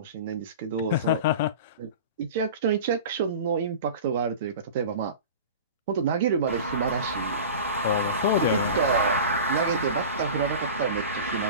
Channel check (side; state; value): both; inverted; correlation -0.34